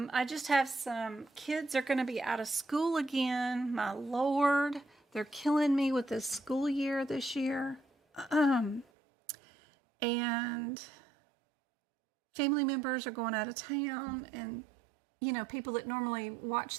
just have some kids are going to be out of school again. My Lord, they're killing me with this school year this year. And family members are going out of town, and people that normally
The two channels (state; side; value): drops out; left; at 8.8 s